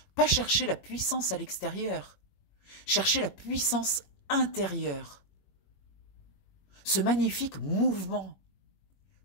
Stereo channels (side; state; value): right; late; 21 ms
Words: Pas chercher la puissance à l'extérieur, chercher la puissance intérieure. Ce magnifique mouvement